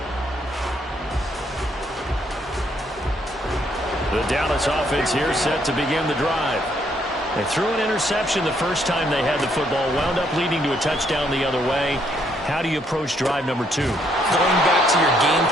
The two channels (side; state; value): both; normal; correlation 0.71